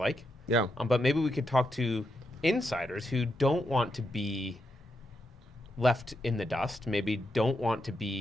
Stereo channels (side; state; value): both; normal; correlation 0.83